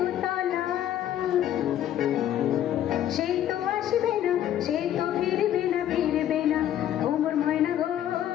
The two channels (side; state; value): right; quieter; 11.4 dB